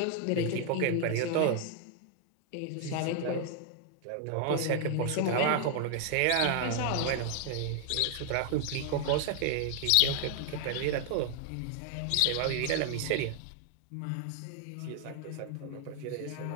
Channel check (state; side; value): different; both; correlation 0.00